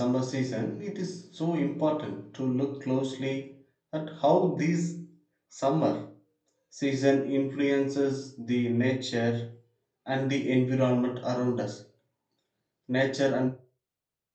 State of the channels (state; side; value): identical; both; correlation 1.00